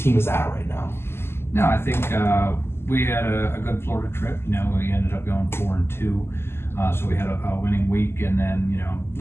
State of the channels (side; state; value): right; late; 0.12 ms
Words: is at right now? No, I think we had a good Florida trip. We ended up going 4-2, so we had a winning week. And then,